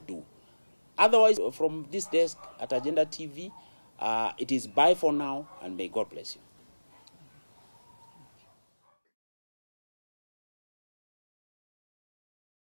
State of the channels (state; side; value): inverted; both; correlation -1.00